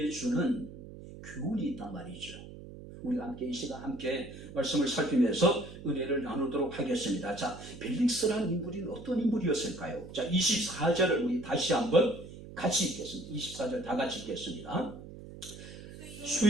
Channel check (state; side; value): noise; right; hum, 14 dB below the sound